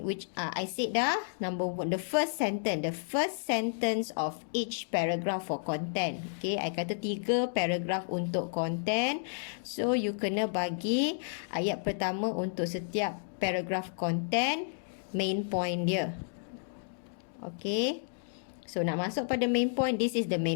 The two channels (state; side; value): silent; right; digital silence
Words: which I said dah, number 1, the first sentence of each paragraph for content. Okay, I kata 3 paragraph untuk content. So, you kena bagi ayat pertama untuk setiap paragraph content, main point dia. Okay, so nak masuk pada main point, this is the